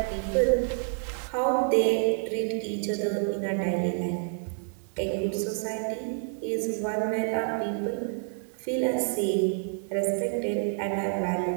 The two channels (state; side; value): silent; left; 59 dB below the other